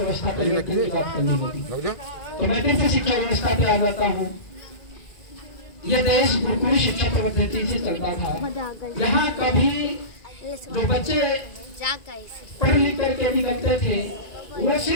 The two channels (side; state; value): right; late; 1.9 ms